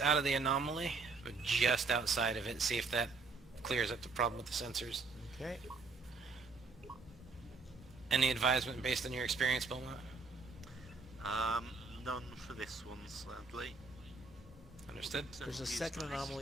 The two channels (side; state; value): left; quieter; 4.1 dB